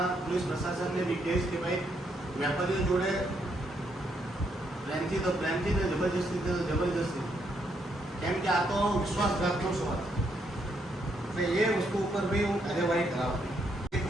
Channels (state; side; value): normal; both; correlation 0.76